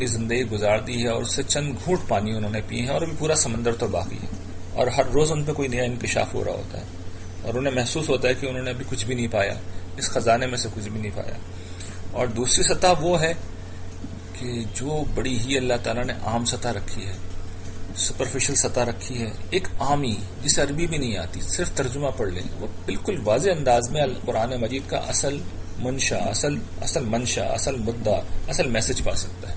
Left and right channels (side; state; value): both; identical; correlation 1.00